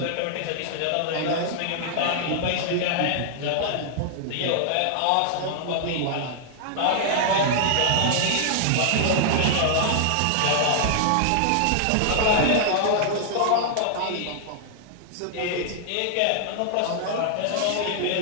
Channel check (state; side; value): different; both; correlation -0.01